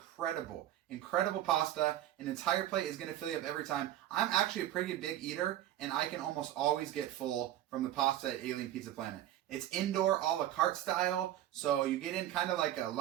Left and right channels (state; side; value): quieter; left; 12.9 dB